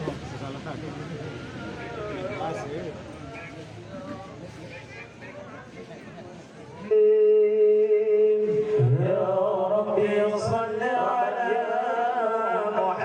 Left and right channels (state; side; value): identical; both; correlation 1.00